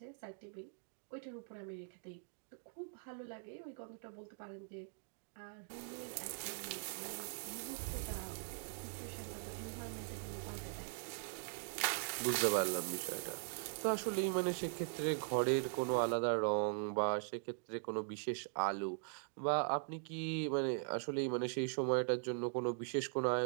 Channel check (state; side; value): silent; left; digital silence